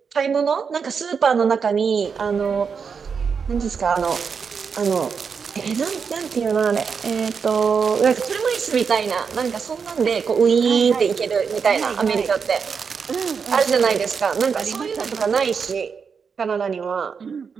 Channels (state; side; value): quieter; left; 6.0 dB